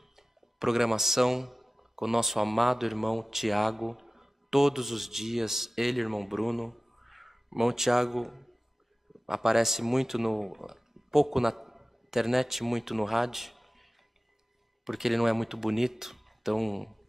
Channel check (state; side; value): normal; both; correlation 0.96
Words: programação com o nosso amado irmão Tiago, todos os dias, ele, irmão Bruno. Irmão Tiago aparece pouco na internet, muito no rádio, porque ele não é muito bonito, então